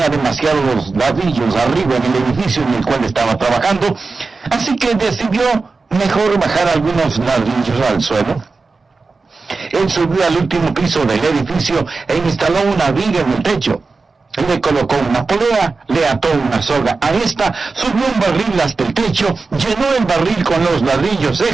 demasiados ladrillos arriba en el edificio en el cual estaba trabajando, así que decidió mejor bajar algunos ladrillos al suelo. Él subió al último piso del edificio e instaló una viga en el techo. Le colocó una polea, le ató una soga a esta, subió un barril hasta el techo, llenó el barril con los ladrillos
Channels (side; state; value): left; quieter; 4.1 dB